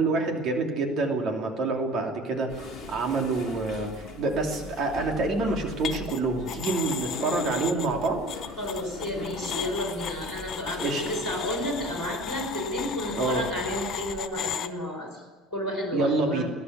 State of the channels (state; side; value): normal; both; correlation 0.42